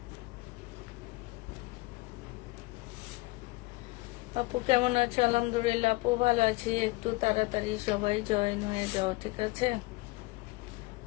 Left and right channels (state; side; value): quieter; right; 23.2 dB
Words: আপু কেমন আছো? আলহামদুলিল্লাহ আপু ভালো আছি। একটু তাড়াতাড়ি সবাই জয়েন হয়ে যাও, ঠিক আছে?